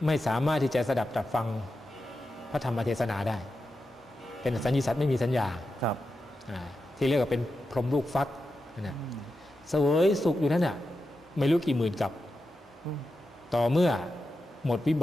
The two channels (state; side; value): normal; both; correlation 0.90